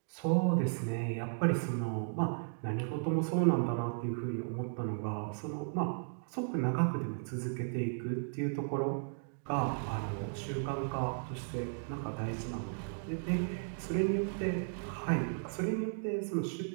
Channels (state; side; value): silent; left; digital silence